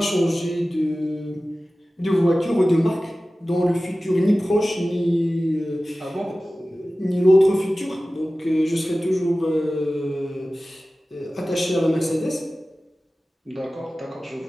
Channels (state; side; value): normal; both; correlation 0.96